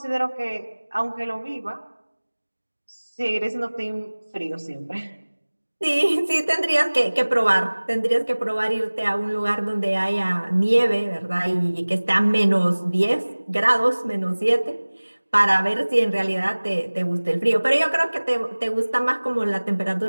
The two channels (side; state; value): both; inverted; correlation -1.00